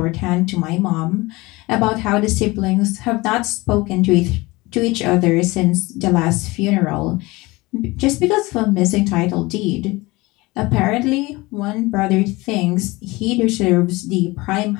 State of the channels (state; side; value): quieter; right; 22.1 dB